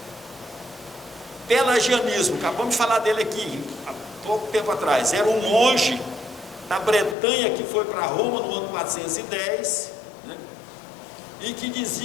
Pelagianismo, acabamos de falar dele aqui há pouco tempo atrás, era um monge da Bretanha que foi para Roma no ano 410, né? E que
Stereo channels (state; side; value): drops out; right; at 7.2 s